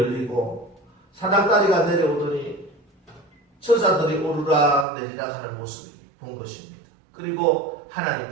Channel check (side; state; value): left; drops out; at 4.9 s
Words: 사닥다리가 내려오더니 천사들이 오르락 내리락 하는 모습을 본 것입니다. 그리고